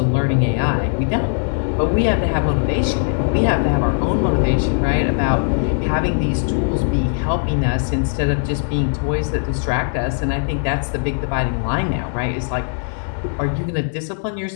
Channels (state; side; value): silent; right; digital silence